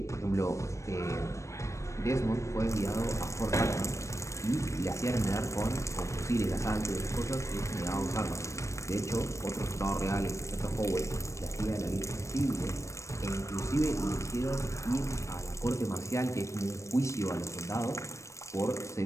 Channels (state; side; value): late; right; 0.15 ms